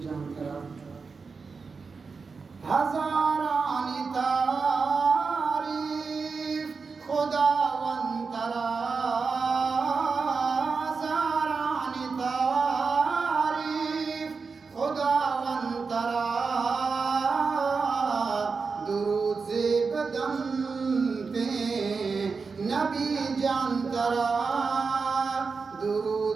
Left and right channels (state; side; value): quieter; left; 4.8 dB